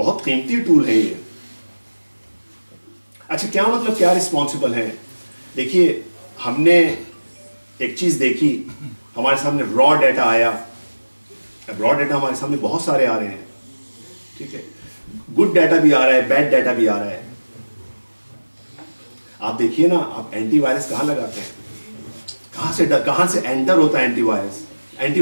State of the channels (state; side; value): inverted; both; correlation -1.00